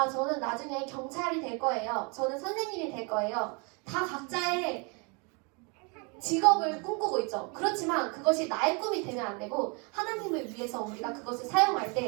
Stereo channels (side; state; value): left; quieter; 32.5 dB